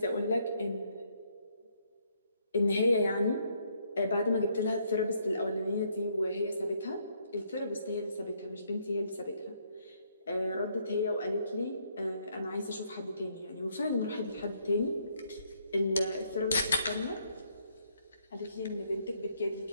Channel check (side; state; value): both; inverted; correlation -0.71